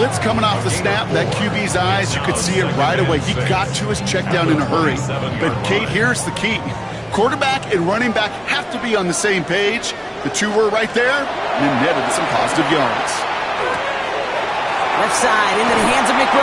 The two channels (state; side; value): identical; both; correlation 1.00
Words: coming off the snap, that QB's eyes, you could see it right away. He got to his check down in a hurry. But, Kate, here's the key. Quarterback and running back have to be on the same page. The two were right there, and then netted some positive yards. Left side into the hands of